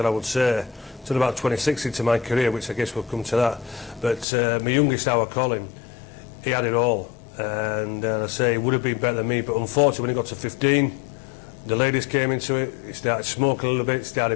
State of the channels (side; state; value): right; drops out; at 4.2 s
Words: I would say, until about 2016 to my career, which I guess will come to that. But my youngest, our Colin, he had it all. And I say he would have been better than me, but unfortunately when he got to 15, the ladies came into it, he started smoking a little bit,